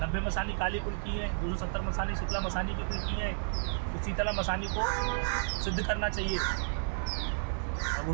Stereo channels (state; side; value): silent; left; 56 dB below the other